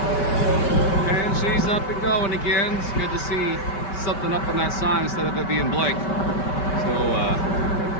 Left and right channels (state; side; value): late; right; 5.2 ms